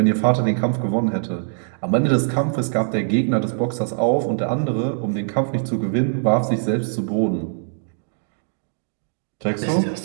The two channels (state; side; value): silent; left; digital silence